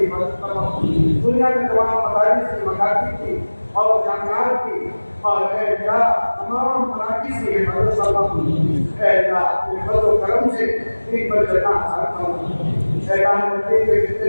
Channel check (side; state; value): both; inverted; correlation -1.00